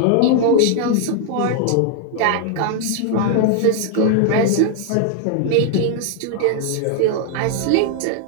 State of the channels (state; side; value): different; both; correlation 0.00